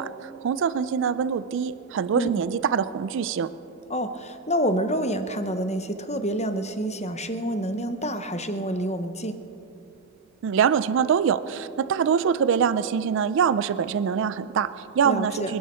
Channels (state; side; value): quieter; left; 5.0 dB